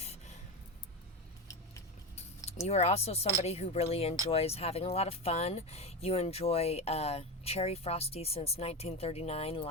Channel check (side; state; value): both; normal; correlation 0.19